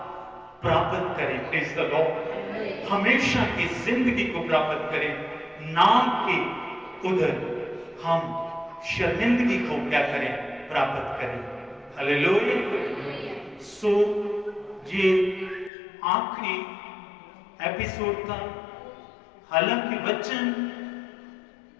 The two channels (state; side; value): drops out; right; at 15.7 s